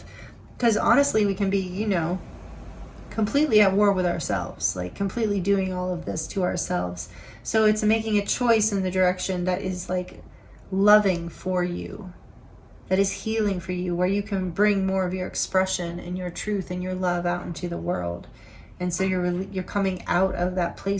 Because honestly, we can be, you know, completely at war with ourselves, like completely doing all of this to ourselves. So it's making a choice in the direction that is like loving for you, that is healing for you, where you can bring more of your expression and your truth and your love out into the world. And so you're coming out of that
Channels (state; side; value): identical; both; correlation 1.00